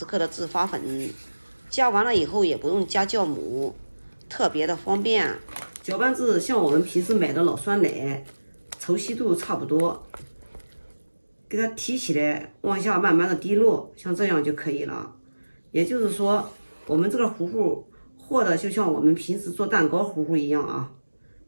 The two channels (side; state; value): both; inverted; correlation -1.00